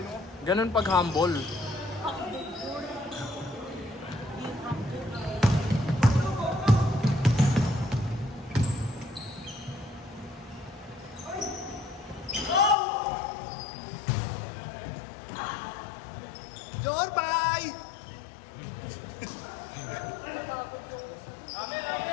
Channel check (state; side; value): drops out; right; at 12.8 s